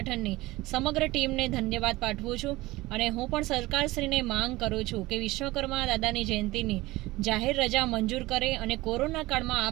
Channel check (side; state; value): left; quieter; 19.5 dB